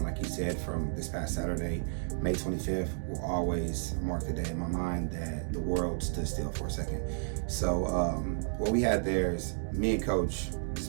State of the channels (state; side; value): silent; left; digital silence